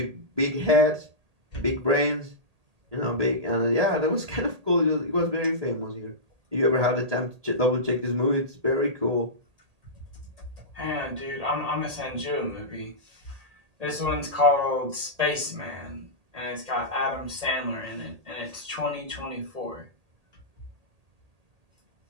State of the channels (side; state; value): left; late; 1.8 ms